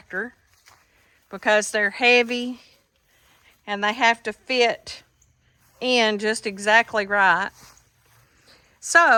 because they're heavy and they have to fit in just exactly right.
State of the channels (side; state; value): both; identical; correlation 1.00